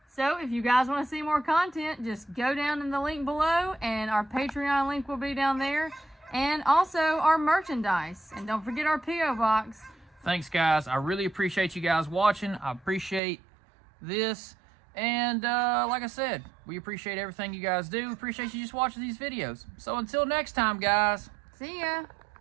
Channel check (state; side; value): drops out; left; at 13.2 s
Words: So if you guys want to see more content, just go down in the link below, and our Patreon link will be down there. and also our merchandise. And don't forget our P.O. box. Thanks, guys. I really appreciate you guys watching. I appreciate this. And like I said, we appreciate everything you guys do. Appreciate you just watching these videos. So until next time, guys. See ya.